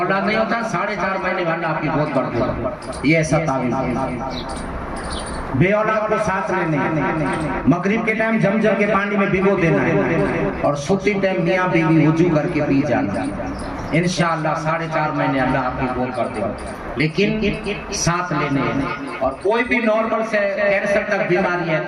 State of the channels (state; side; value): identical; both; correlation 1.00